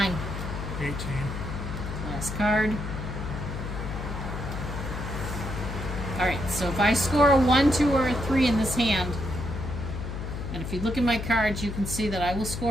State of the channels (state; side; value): noise; left; hum, 6 dB below the sound